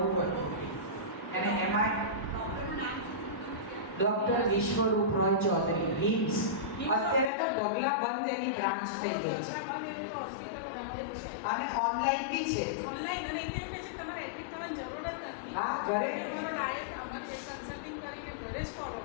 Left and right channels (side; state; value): right; drops out; at 7.2 s